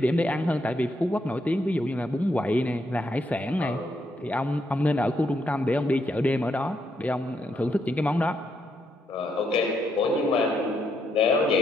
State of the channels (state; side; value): normal; both; correlation 0.77